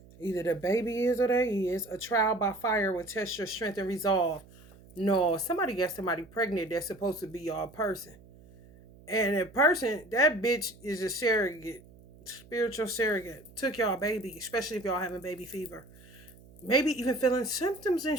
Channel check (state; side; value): noise; right; hum, 23 dB below the sound